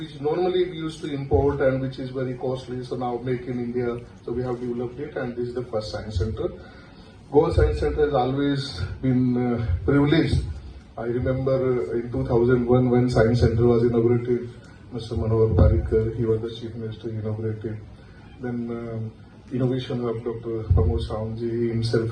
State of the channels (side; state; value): both; identical; correlation 1.00